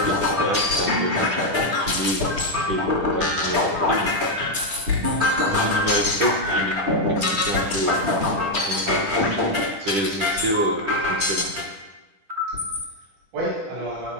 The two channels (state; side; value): late; left; 10 ms